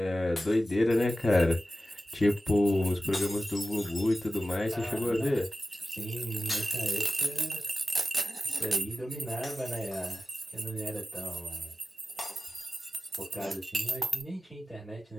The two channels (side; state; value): both; normal; correlation 0.95